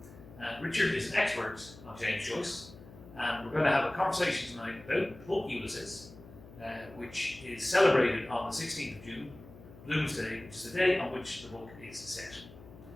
Richard is an expert on James Joyce and we're going to have a conversation tonight about the book Ulysses, which is celebrated on the 16th of June, Bloomsday, which is the day on which the book is set.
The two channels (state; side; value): noise; left; hum, 19 dB below the sound